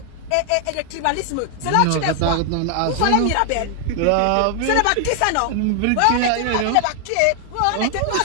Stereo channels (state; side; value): different; both; correlation 0.00